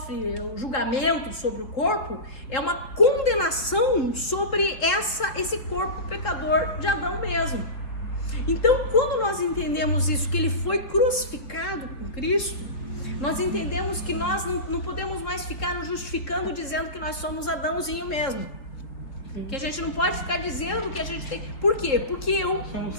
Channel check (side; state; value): right; late; 3.7 ms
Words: o julgamento sobre o corpo, é uma condenação sobre esse corpo pecador de Adão mesmo. Então, quando nós entendemos isso, que ele foi crucificado com Cristo, nós entendemos que nós não podemos mais ficar nos justificando dizendo que nós somos Adãozinho mesmo. Que a gente não pode ficar dizendo que a gente tem... Por quê? Porque eu